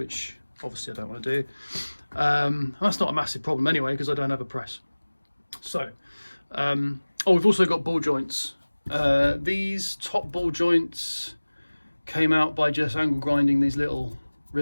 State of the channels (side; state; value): both; inverted; correlation -1.00